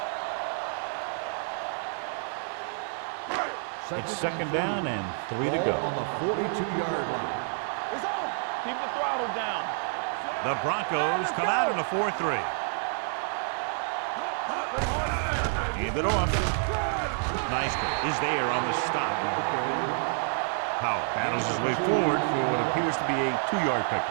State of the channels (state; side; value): silent; left; 59 dB below the other